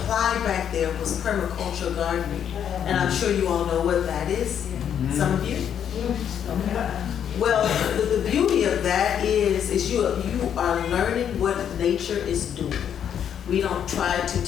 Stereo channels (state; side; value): quieter; right; 8.9 dB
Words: back there was permaculture gardening. And I'm sure you all know what that is. Some of you? Okay. Well, the beauty of that is you are learning what nature is doing. We don't try to